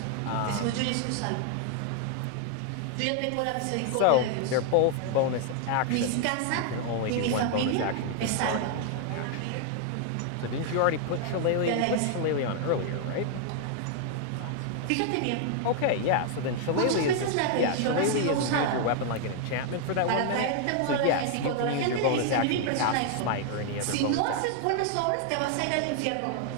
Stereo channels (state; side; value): different; both; correlation 0.00